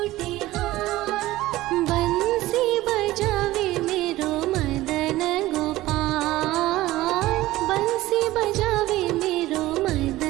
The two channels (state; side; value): quieter; left; 16.9 dB